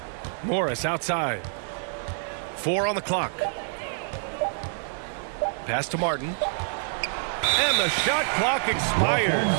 Morris outside. 4 on the clock. Pass to Martin. And the shot clock expired.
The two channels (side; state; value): left; silent; digital silence